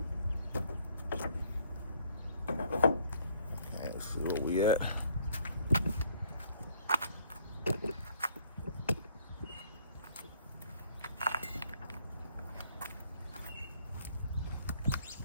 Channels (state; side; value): inverted; both; correlation -0.64